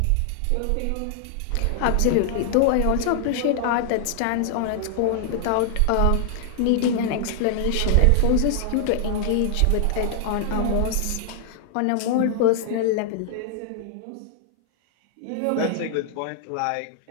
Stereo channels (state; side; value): different; both; correlation 0.00